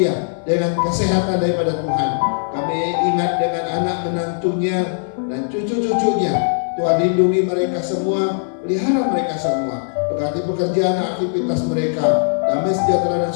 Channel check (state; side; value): silent; right; 57 dB below the other